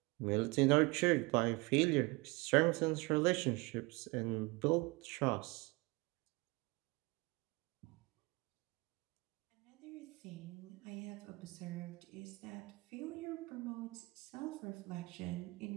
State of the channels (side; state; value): left; quieter; 25.3 dB